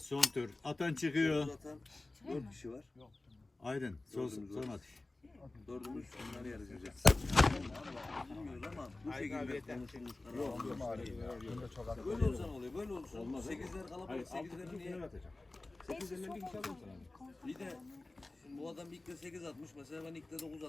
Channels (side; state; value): right; quieter; 3.0 dB